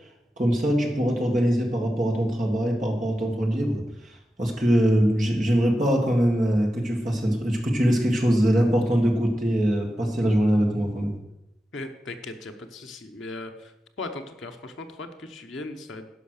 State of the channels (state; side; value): normal; both; correlation 0.91